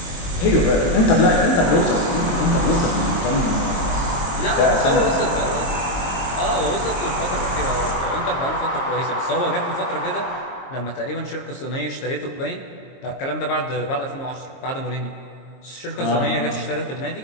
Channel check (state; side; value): late; right; 22 ms